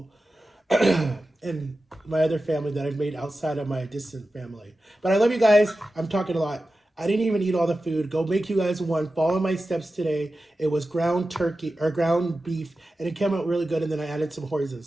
and my other family that I've made outside of my distant family. But I love you guys. I'm talking a lot. I didn't even eat all the food. Go make you guys one. Follow my steps today. It was ground turkey or ground beef, and it came out really good. And then I added some hoisin.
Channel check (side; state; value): both; normal; correlation 0.93